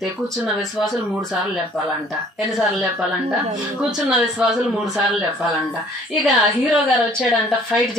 కూర్చున్న విశ్వాసులు 3 సార్లు చెప్పాలంట. ఎన్నిసార్లు చెప్పాలంట? కూర్చున్న విశ్వాసులు 3 సార్లు చెప్పాలంట. ఇక హీరో గారు వచ్చాడంట, ఫైట్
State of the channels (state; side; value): normal; both; correlation 0.56